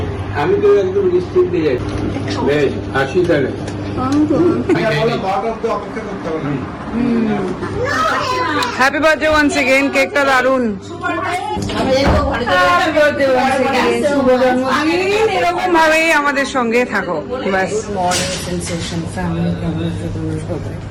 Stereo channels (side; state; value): both; identical; correlation 1.00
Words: আমি তো একদম নিশ্চিন্তে যাচ্ছি। বেশ হাসি তাহলে হ্যাপি বার্থডে ওয়ান্স এগেইন। কেকটা দারুন। এরকম ভাবেই আমাদের সঙ্গে থাকো ব্যাস।